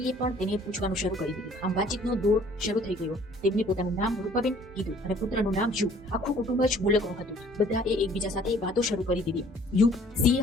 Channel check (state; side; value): normal; both; correlation 0.56